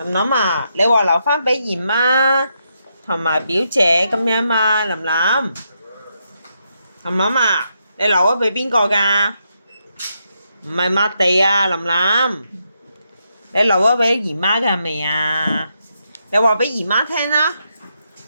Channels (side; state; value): both; inverted; correlation -0.81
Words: 林啊，你話留翻俾姨媽同埋表姐咁樣嘛？林林啊，你留咗俾邊個㗎？唔係抹地啊，林林，你留咗俾姨媽㗎係咪啊？你話俾姨媽聽啦，